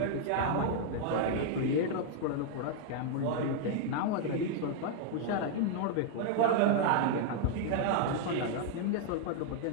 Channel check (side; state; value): both; different; correlation -0.01